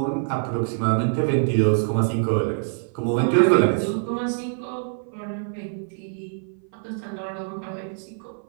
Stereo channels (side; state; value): left; silent; 56 dB below the other